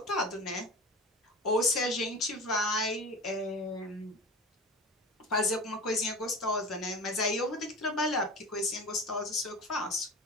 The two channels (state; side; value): normal; both; correlation 0.32